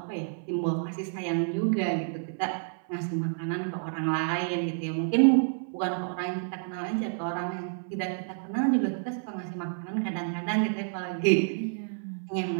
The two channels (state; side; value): silent; left; 58 dB below the other